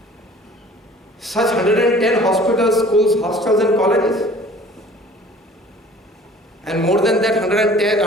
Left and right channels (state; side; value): normal; both; correlation 0.49